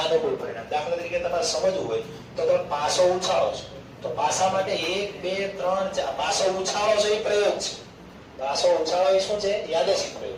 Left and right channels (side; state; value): both; identical; correlation 1.00